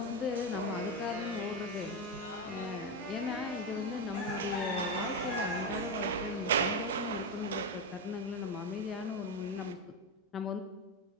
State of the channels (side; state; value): both; normal; correlation 0.10